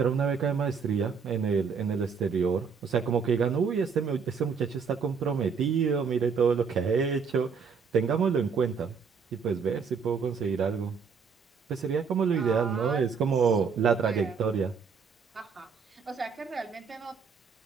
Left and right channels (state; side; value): quieter; left; 5.9 dB